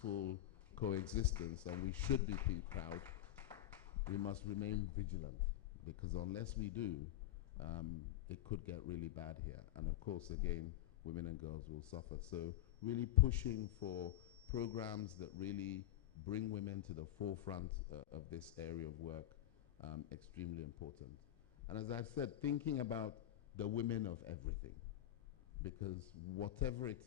coexistence, and we should be proud, we must remain vigilant, because unless we do, it could get really bad here. And of course, again, women and girls will suffer. So really pushing for programs that really bring women to the forefront of this area of work, extremely important. And as I've said, thinking about the women of everything, because whatever it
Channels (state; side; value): quieter; right; 13.1 dB